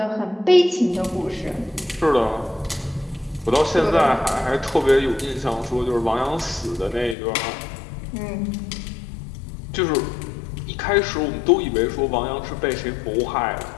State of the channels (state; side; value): drops out; right; at 7.2 s